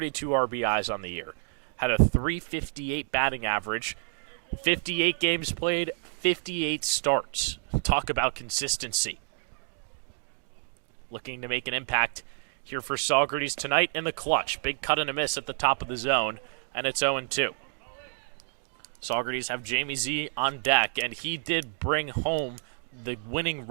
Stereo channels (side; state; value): left; silent; 59 dB below the other